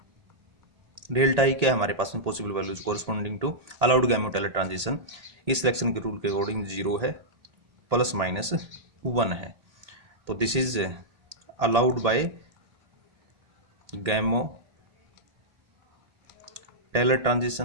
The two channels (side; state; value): left; late; 1.8 ms